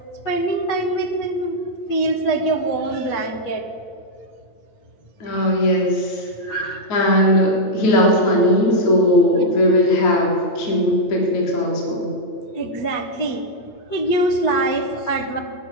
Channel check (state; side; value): late; right; 8.8 ms